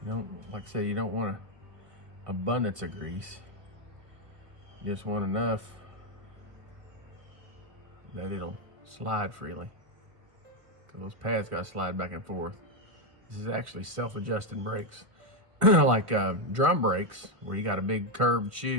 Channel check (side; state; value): left; late; 1.1 ms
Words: You don't, like I say, you don't want an abundance of grease. You just want enough that it'll slide freely. Because those pads got to slide back and forth. This is actually self-adjusting brakes. Like drum brakes, where you got a big curved